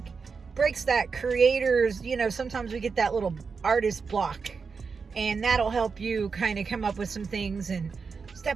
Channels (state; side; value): quieter; left; 5.2 dB